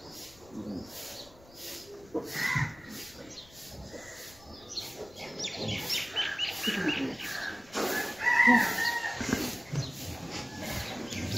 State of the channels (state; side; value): noise; left; rumble, 24 dB below the sound